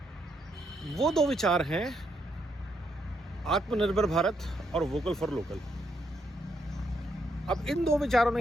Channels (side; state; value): both; normal; correlation 0.77